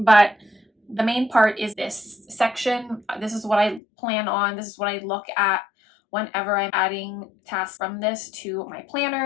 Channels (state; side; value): drops out; right; at 3.8 s